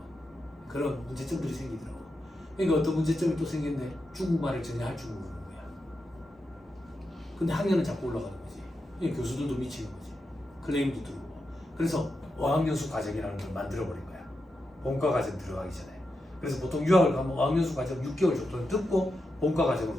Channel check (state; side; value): normal; both; correlation 0.87